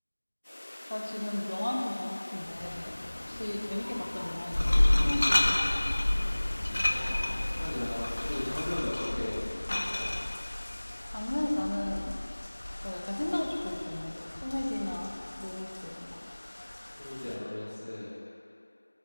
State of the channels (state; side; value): inverted; both; correlation -1.00